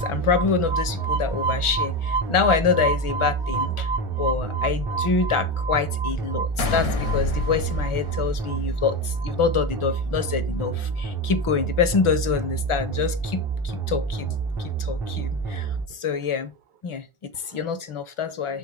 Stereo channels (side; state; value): right; late; 1.4 ms